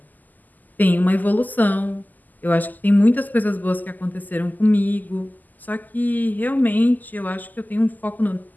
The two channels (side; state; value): right; late; 0.083 ms